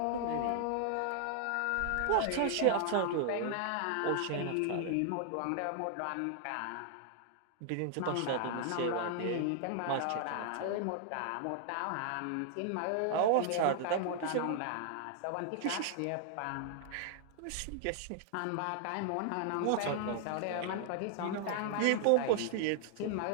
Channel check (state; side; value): different; both; correlation 0.00